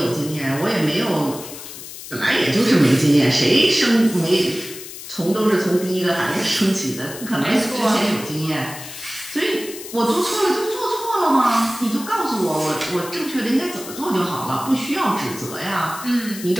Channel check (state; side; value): noise; left; hiss, 12 dB below the sound